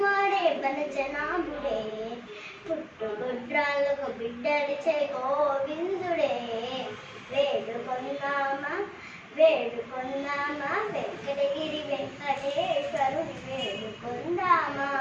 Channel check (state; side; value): identical; both; correlation 1.00